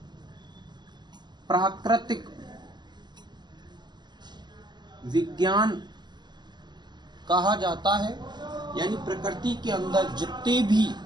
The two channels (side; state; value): left; late; 0.21 ms